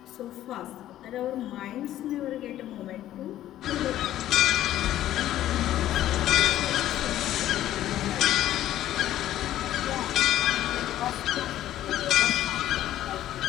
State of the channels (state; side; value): quieter; right; 13.0 dB